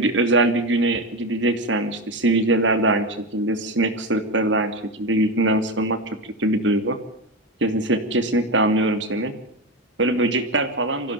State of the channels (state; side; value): normal; both; correlation 0.17